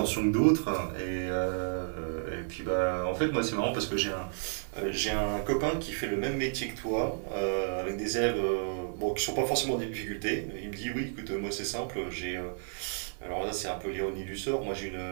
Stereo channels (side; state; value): left; silent; 57 dB below the other